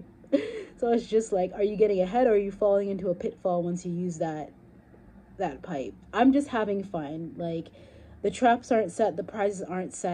So it's just like, are you getting ahead or are you falling into a pitfall once you use that pipe? I'm just having fun. Like, the traps aren't set, the prizes aren't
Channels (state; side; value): identical; both; correlation 1.00